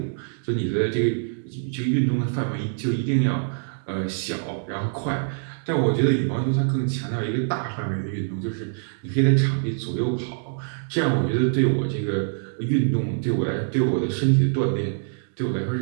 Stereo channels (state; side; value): silent; left; digital silence